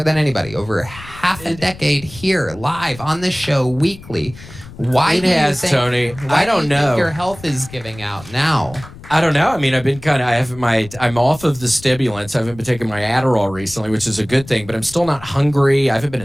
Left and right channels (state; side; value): noise; left; rumble, 18 dB below the sound